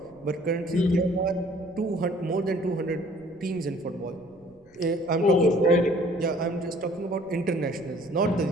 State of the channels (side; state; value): left; noise; rumble, 30 dB below the sound